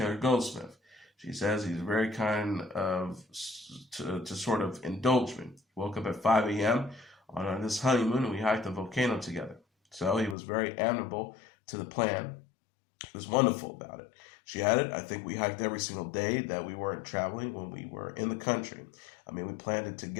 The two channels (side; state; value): right; drops out; at 10.4 s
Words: Goldsmith. She says he's very kind to sort of indulge me. He woke up at 5 a.m. on this honeymoon, and we hiked the volcano together. So he was very amenable to the plan. He was wonderful about it. She added, "I think we hiked every single day that we weren't traveling when we were in the country. I mean, we planned it